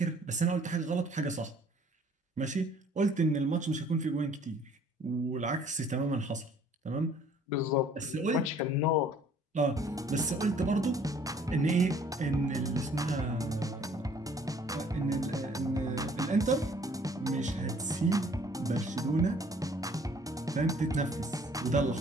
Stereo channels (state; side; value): normal; both; correlation 0.57